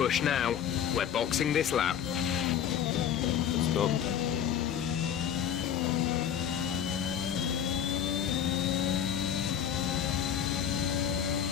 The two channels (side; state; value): right; quieter; 9.1 dB